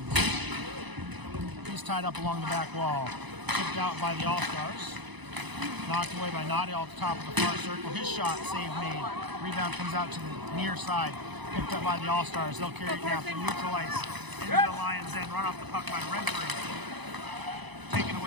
He's tied up along the back wall. Tipped out by the All-Stars. Knocked away by Nadial at the top of the far circle. His shot, save made. Rebound comes out to the near side. Picked up by the All-Stars. They'll carry it now through neutral ice. Into the Lions' end. Run off the puck by Renfrew. Taken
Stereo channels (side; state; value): left; late; 1.0 ms